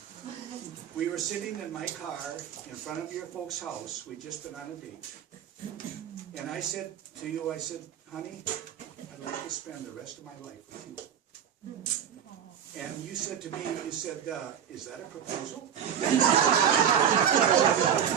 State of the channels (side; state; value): left; quieter; 8.7 dB